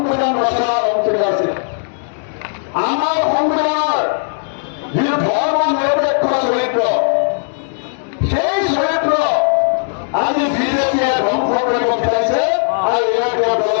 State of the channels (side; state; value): right; silent; 63 dB below the other